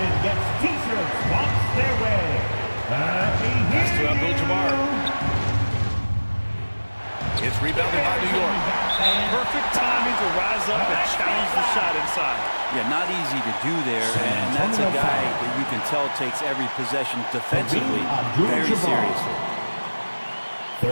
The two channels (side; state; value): both; inverted; correlation -1.00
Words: gets T-shirts walks their way. Pass to Abdul-Jabbar. It's rebounded by New York. Perfect timing to rise up and challenge the shot inside. Yeah, not easy to do there, and that's a guy that you can tell takes every possession defensively very seriously.